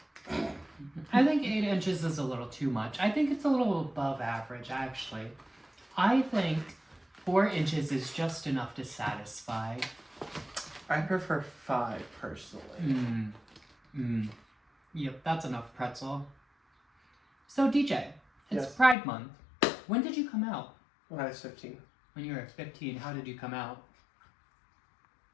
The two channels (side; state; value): right; drops out; at 18.9 s